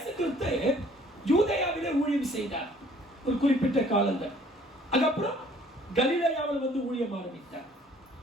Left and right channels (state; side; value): normal; both; correlation 0.57